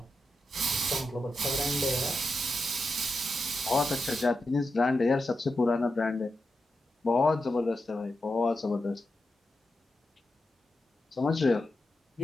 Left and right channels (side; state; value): both; normal; correlation 0.88